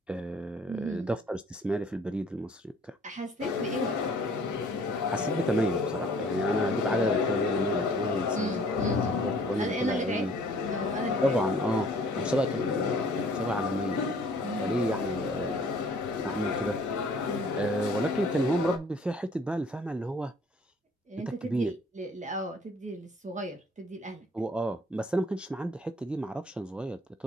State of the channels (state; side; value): normal; both; correlation 0.56